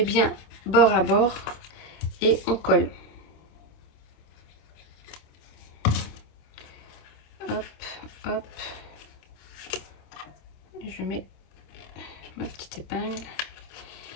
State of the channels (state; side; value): late; right; 26 ms